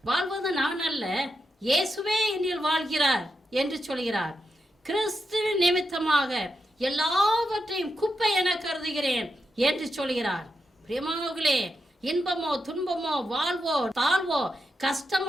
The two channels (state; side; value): normal; both; correlation 0.86